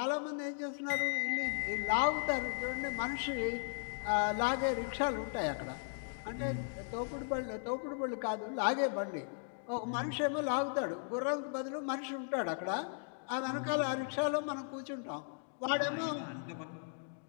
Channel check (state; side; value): silent; right; digital silence